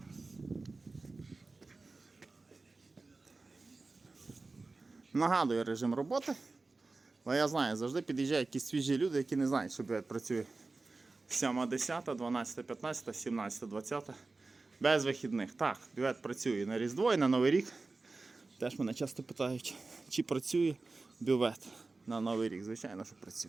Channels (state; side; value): quieter; left; 3.6 dB